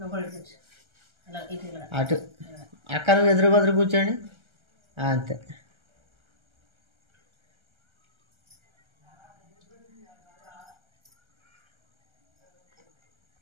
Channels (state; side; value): late; left; 1.3 ms